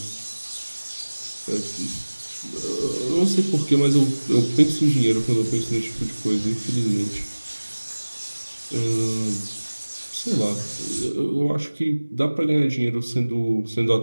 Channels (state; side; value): inverted; both; correlation -1.00